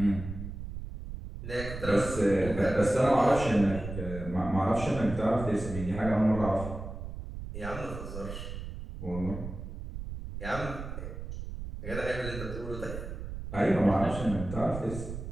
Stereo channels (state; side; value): noise; right; rumble, 8 dB below the sound